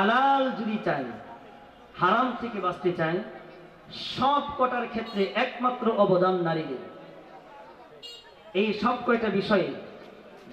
যদি চাই, হারাম থেকে বাঁচতে চাই, সব কটার ক্ষেত্রে একমাত্র অবদান নারীদের। এই সব কয়টা বিষয়ে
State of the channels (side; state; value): both; identical; correlation 1.00